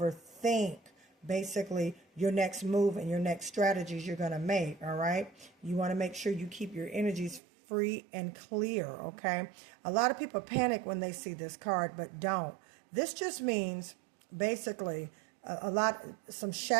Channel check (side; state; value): left; drops out; at 7.4 s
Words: basically your next move and your next strategies you're going to make, all right? You want to make sure you keep your energies free and clear, okay? A lot of people panic when they see this card, but don't. This just means basically some